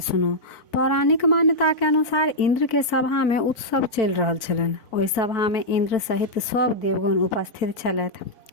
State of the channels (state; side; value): late; right; 4.0 ms